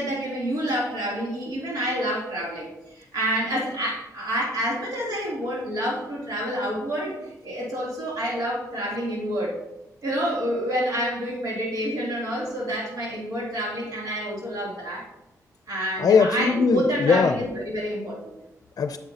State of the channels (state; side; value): normal; both; correlation 0.60